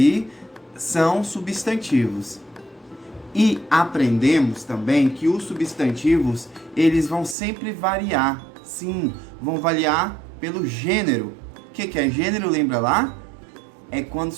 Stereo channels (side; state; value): left; drops out; at 7.4 s